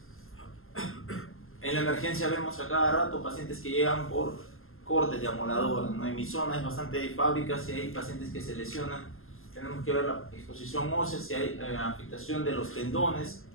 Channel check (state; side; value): late; right; 0.61 ms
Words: En la emergencia vemos a cada rato pacientes que llegan por cortes de amoladora, ¿no? En mi zona es bastante fábrica, si hay pacientes que se lesionan, tenemos que ver la exposición ósea, si hay afectación de los tendones,